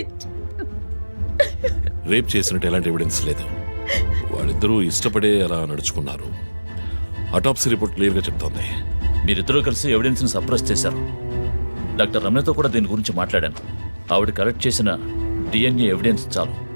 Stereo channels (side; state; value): both; inverted; correlation -1.00